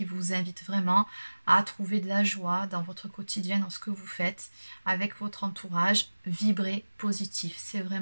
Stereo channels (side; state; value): both; inverted; correlation -1.00